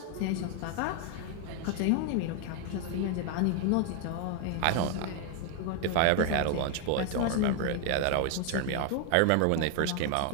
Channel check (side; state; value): both; different; correlation 0.01